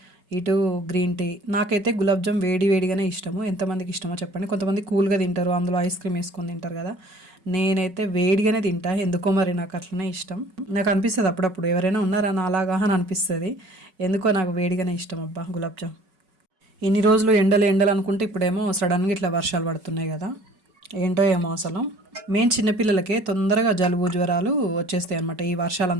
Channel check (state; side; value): late; left; 5.4 ms